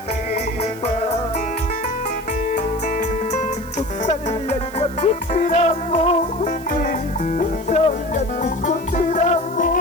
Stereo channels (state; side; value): noise; right; hiss, 20 dB below the sound